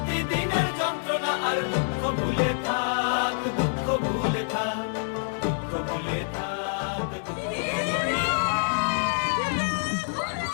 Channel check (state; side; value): silent; right; digital silence